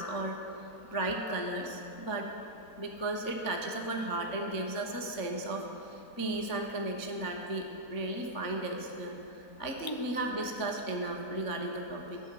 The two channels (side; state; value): right; late; 3.6 ms